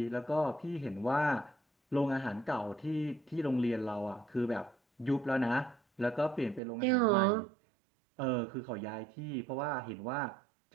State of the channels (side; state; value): left; drops out; at 6.6 s